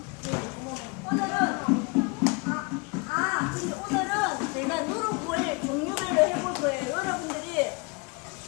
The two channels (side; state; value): right; quieter; 29.7 dB